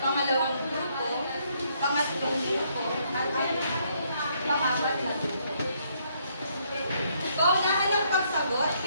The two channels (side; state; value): both; inverted; correlation -0.71